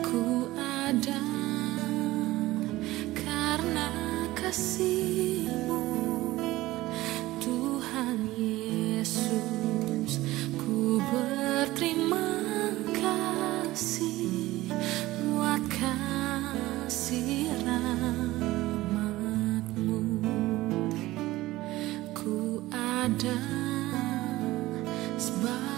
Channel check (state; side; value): quieter; left; 17.7 dB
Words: ku ada karena kasih-Mu, Tuhan Yesus. Ku berterima kasih buat kasih rahmat-Mu. Ku ada